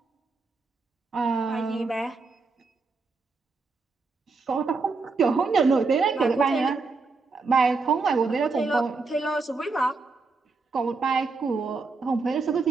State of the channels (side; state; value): left; quieter; 4.1 dB